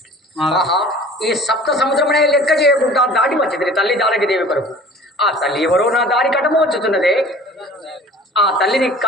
ఈ సప్త సముద్రమునే లెక్క చేయకుండా దాటి వచ్చింది తల్లి దానికి దేవి కొరకు. ఆ తల్లి ఎవరో నా దారి కటము వచ్చుతున్నదే. ఆ తల్లిని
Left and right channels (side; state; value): both; normal; correlation 0.45